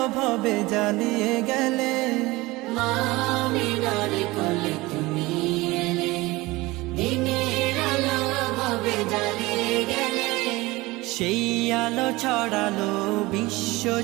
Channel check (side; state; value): left; quieter; 21.0 dB